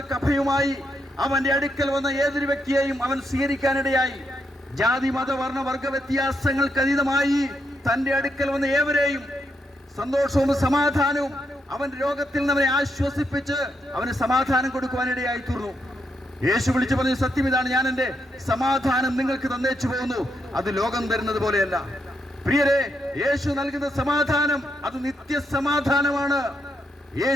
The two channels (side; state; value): both; normal; correlation 0.80